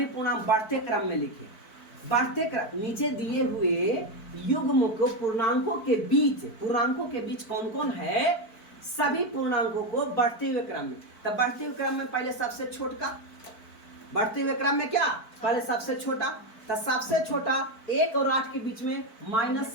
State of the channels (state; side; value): late; right; 4.5 ms